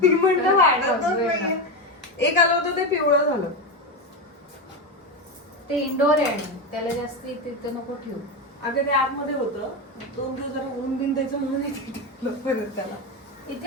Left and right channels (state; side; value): normal; both; correlation 0.15